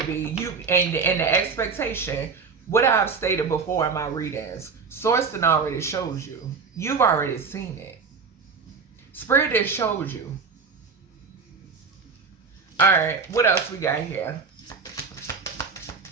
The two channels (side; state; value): left; quieter; 5.1 dB